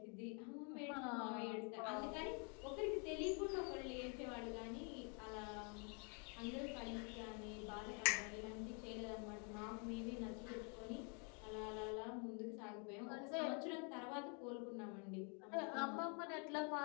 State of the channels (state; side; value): quieter; right; 37.1 dB